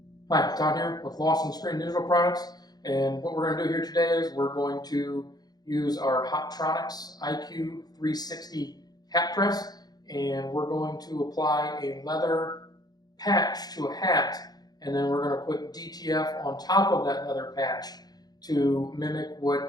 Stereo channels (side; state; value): right; late; 0.19 ms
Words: Hi, Todd here with Lawson Screen Digital Products, and what we're going to do here today is we're going to use our Hotronix IQ 360 hat press, and we're going to apply a leather patch to a hat, and then we're going to put DTF on top of that leather patch to mimic